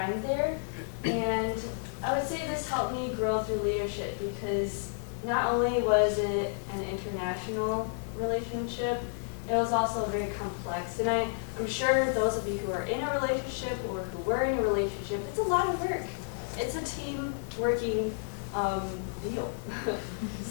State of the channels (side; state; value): right; silent; digital silence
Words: there. And I would say this helped me grow through leadership, because not only was it an international relationship, it was also very complex. And I'm sure those of you who are in a relationship or who were in a relationship, it's a lot of work. It's a team working deal.